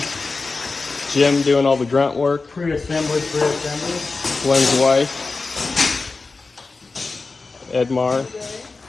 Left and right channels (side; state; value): right; quieter; 3.9 dB